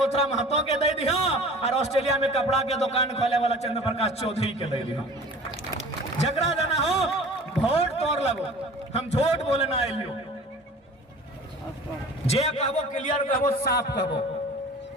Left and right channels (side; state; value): both; normal; correlation 0.43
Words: महतो के दे दी हो, और ऑस्ट्रेलिया में कपड़ा के दुकान खोले वाला चंद्र प्रकाश चौधरी के दे दी हो। झगड़ा देना हो वोट तोड़ लगो, हम झूठ बोले ना आइलियो। जे कहबो क्लियर कहबो, साफ कहबो।